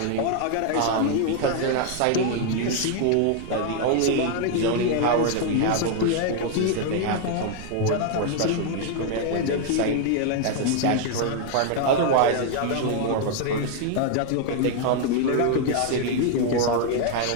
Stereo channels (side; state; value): both; different; correlation 0.00